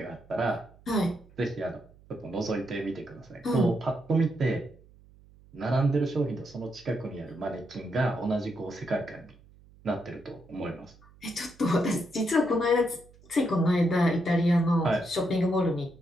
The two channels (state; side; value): noise; right; hum, 25 dB below the sound